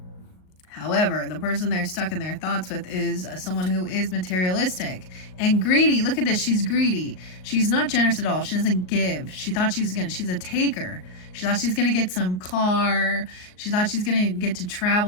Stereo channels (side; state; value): right; late; 38 ms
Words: However, the person they're stuck in their thoughts with is someone who is materialistic and greedy. Look at this. She's greedy. She's not generous at all. She doesn't give. She thought she's a taker. She thought she's going to get some car. She thought she's going to get to